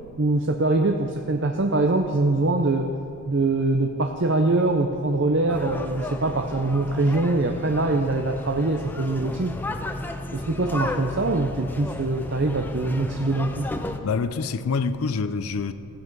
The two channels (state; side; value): noise; right; rumble, 24 dB below the sound